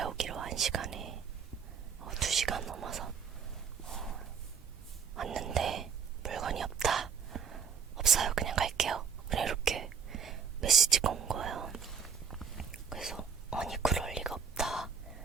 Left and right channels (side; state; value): left; quieter; 6.7 dB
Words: 오기로 한 시간에 2시간 넘어서 왔는데 물건이 없다. 없어요. 그냥 갈게요. 그냥 이렇게 메시지가 온 거예요. 그래서 아니 그럴 리가 없다.